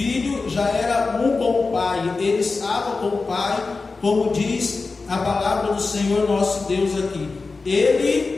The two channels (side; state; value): right; quieter; 4.0 dB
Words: já era um com o Pai. Ele estava com o Pai, como diz a palavra do Senhor nosso Deus aqui.